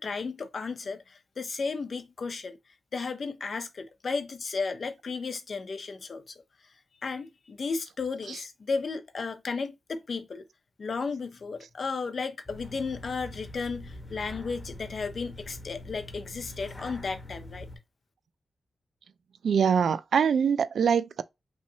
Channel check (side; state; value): both; normal; correlation 0.81